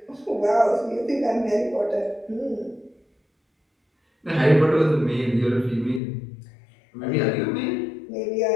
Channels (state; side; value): drops out; right; at 6.0 s